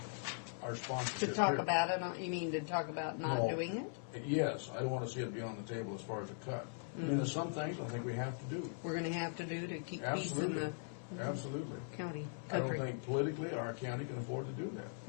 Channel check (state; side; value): silent; right; 51 dB below the other